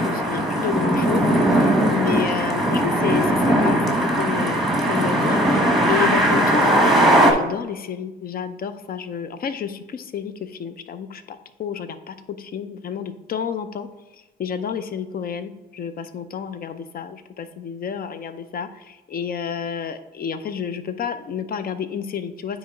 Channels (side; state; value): both; normal; correlation 0.51